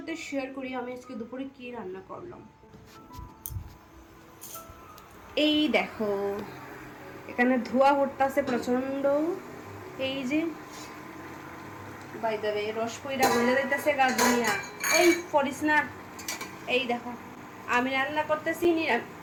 শেয়ার করি আমি আজকে দুপুরে কি রান্না করলাম। এই দেখো, এখানে ধোয়া উঠতেছে প্রচন্ড। এই যে বাই দ্য ওয়ে রস কইরা গলে যাইতেছে গার্ডেনিয়া। এই পড়িস না। এই দেখো আমি রান্না করতেছি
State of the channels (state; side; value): identical; both; correlation 1.00